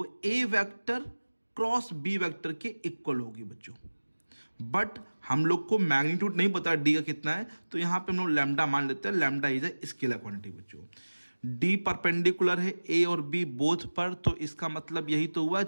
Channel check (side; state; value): both; inverted; correlation -1.00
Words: ए वेक्टर क्रॉस बी वेक्टर के इक्वल होगी बच्चों। बट हम लोग को मैग्नीट्यूड नहीं पता डी का कितना है, तो यहां पे हम लोग लैम्डा मान लेते हैं। Lambda is a scalar quantity बच्चों। डी परपेंडिकुलर है ए और बी बोथ पर, तो इसका मतलब यही तो हुआ